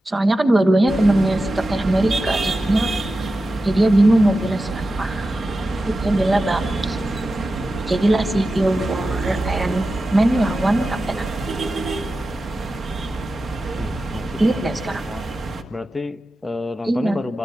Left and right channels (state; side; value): normal; both; correlation 0.93